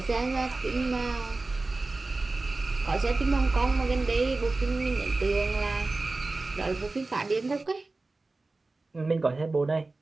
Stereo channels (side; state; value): left; quieter; 3.4 dB